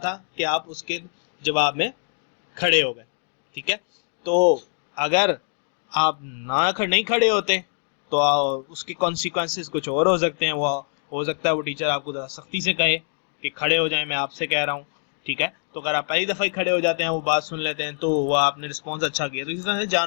कि आप उसके जवाब में खड़े हो गए। ठीक है, तो अगर आप नहीं खड़े होते तो उसके कॉन्सिक्वेंसेस कुछ और हो सकते हैं। वो हो सकता है वो टीचर आपको ज़रा सख्ती से कहे कि खड़े हो जाएं, मैं आपसे कह रहा हूँ। ठीक है, तो अगर आप पहली दफ़ा ही खड़े हो जाते हैं, वो बात सुन लेते हैं, तो वो आपने रिस्पॉन्स अच्छा किया। तो इस तरह से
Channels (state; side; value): silent; right; 62 dB below the other